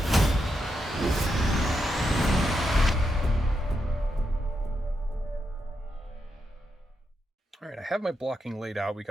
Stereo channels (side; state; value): both; normal; correlation 0.84